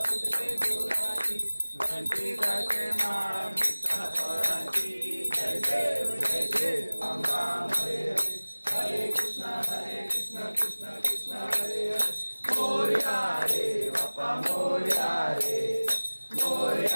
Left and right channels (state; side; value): inverted; both; correlation -1.00